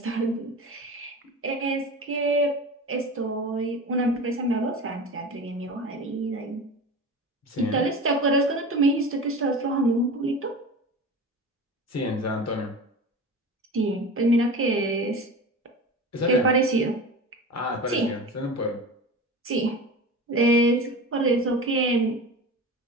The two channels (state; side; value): normal; both; correlation 0.32